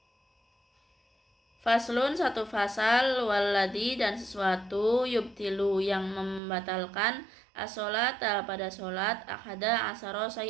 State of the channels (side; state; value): left; drops out; at 6.4 s